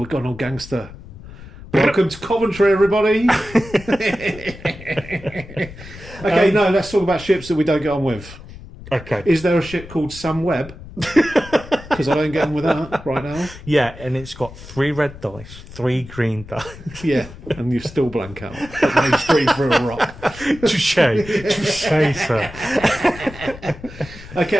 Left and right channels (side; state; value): left; noise; rumble, 16 dB below the sound